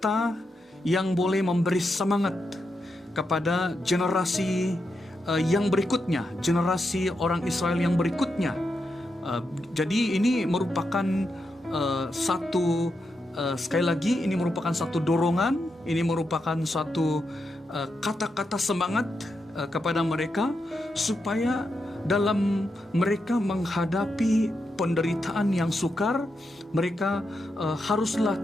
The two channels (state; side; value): normal; both; correlation 0.85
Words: yang boleh memberi semangat kepada generasi yang berikutnya, generasi orang Israel yang berikutnya. Jadi ini merupakan sekali lagi, ini merupakan satu dorongan, ini merupakan satu kata-kata semangat kepada mereka, supaya dalam mereka menghadapi penderitaan yang sukar, mereka haruslah